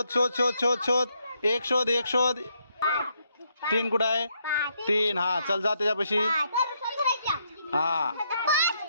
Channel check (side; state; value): both; inverted; correlation -0.76